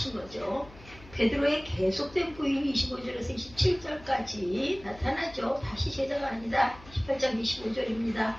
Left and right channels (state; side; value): noise; left; hum, 21 dB below the sound